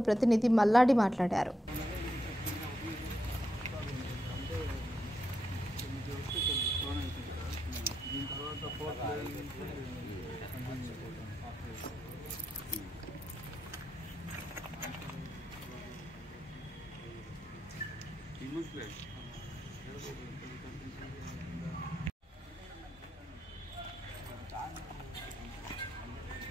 ప్రతినిధి మల్లాడి మాట్లాడారు.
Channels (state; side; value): normal; both; correlation 0.82